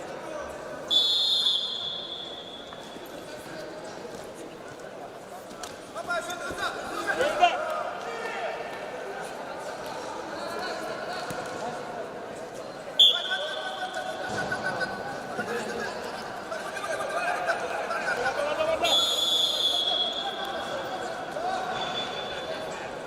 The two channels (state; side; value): identical; both; correlation 1.00